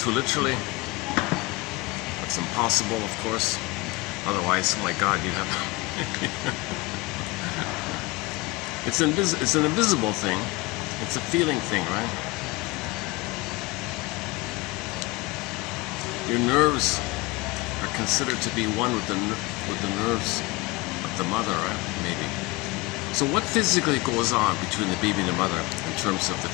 literally. That's impossible, of course. Otherwise, oh my God, you have. It's an invisible thing. It's a feeling thing, right? Your nerves are considered to be one with the nerves of the mother, right? Maybe. So what physically goes on between the baby and the mother in terms of the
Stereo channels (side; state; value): right; quieter; 22.5 dB